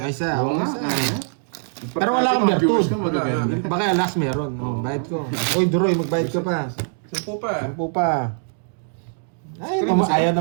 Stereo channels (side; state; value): left; silent; digital silence